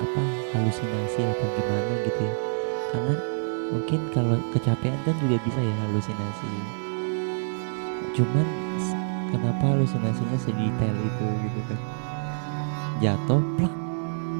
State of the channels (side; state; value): left; silent; digital silence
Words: halusinasi atau gimana gitu ya. Karena mungkin kalau kecapean kan juga bisa ya halusinasi. Bisa banget. Cuman kenapa halusinasinya sedetail itu gitu kan? Kayaknya- Jatuh, plak,